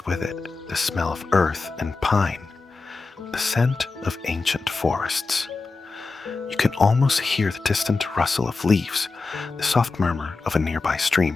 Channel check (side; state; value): right; quieter; 4.0 dB